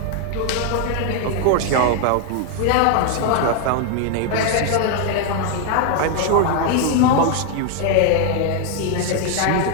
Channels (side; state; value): both; different; correlation 0.00